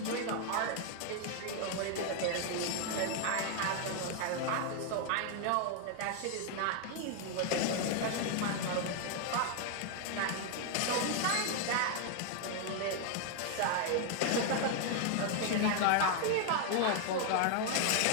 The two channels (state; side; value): different; both; correlation 0.00